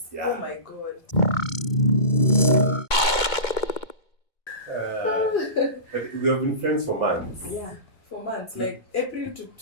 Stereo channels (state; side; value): late; right; 2.2 ms